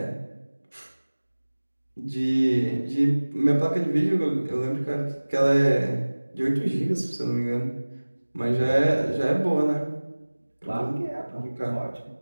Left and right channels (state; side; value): inverted; both; correlation -1.00